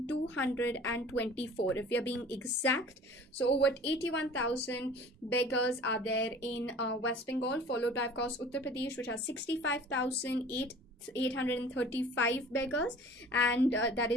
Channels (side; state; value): both; normal; correlation 0.45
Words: if we are being exact. So over 81,000 beggars are there in West Bengal, followed by of course Uttar Pradesh, which has 65,835 beggars, and that